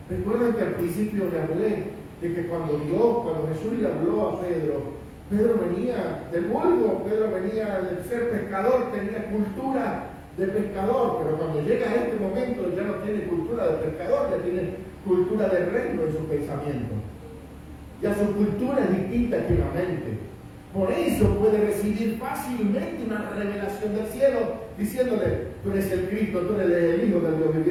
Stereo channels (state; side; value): identical; both; correlation 1.00